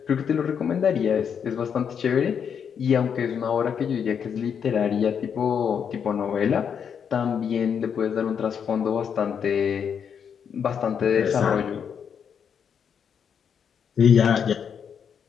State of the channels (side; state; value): right; quieter; 7.4 dB